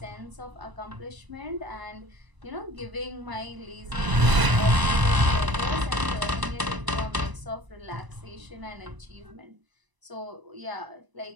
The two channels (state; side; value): late; left; 1.0 ms